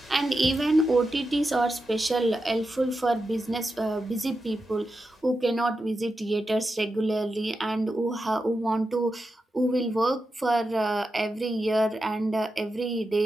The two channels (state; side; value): normal; both; correlation 0.89